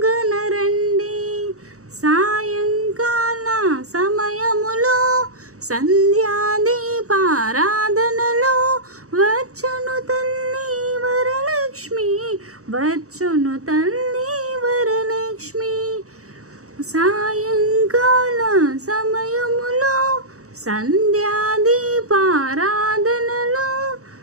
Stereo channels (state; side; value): late; left; 0.65 ms